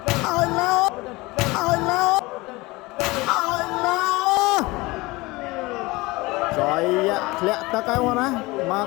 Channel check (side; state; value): right; quieter; 22.3 dB